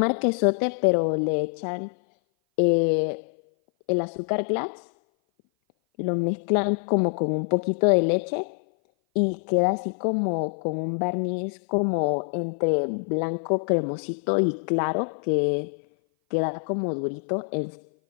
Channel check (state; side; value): silent; right; 57 dB below the other